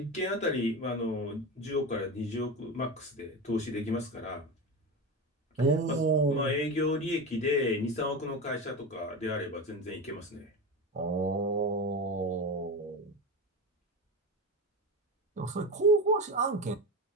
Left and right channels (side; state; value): both; normal; correlation 0.23